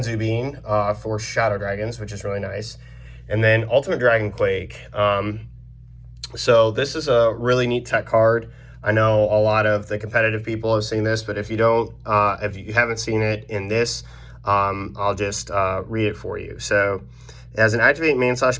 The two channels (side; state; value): both; identical; correlation 1.00